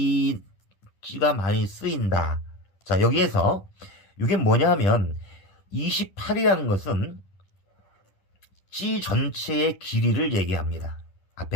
찌가 많이 쓰인다. 자, 여기에서 이게 뭐냐 하면 28이라는 것은 찌 전체의 길이를 얘기합니다.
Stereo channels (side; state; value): right; late; 10 ms